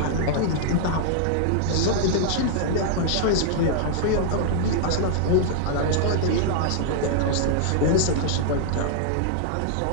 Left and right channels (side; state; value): both; different; correlation -0.01